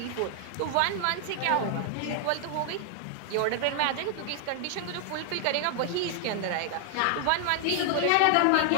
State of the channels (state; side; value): different; both; correlation 0.00